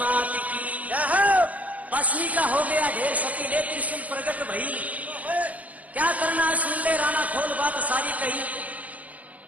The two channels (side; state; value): left; late; 0.072 ms